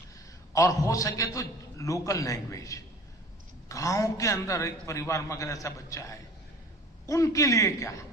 और हो सके तो लोकल लैंग्वेज, गांव के अंदर एक परिवार में अगर ऐसा बच्चा है, उनके लिए क्या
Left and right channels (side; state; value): both; normal; correlation 0.44